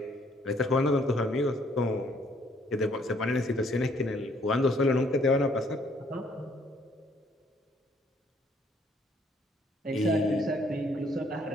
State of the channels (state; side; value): normal; both; correlation 0.65